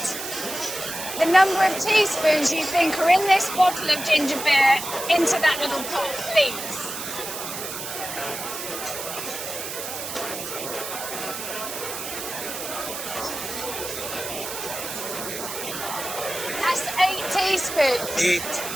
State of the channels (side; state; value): right; noise; hiss, 7 dB below the sound